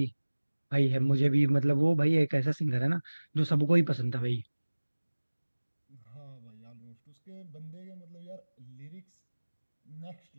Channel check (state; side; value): inverted; both; correlation -1.00